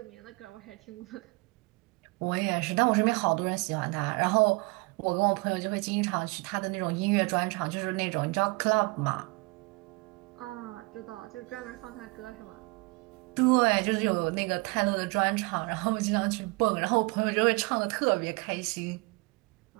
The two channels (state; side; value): quieter; left; 27.3 dB